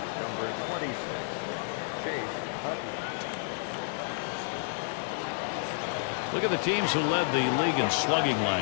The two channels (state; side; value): silent; right; digital silence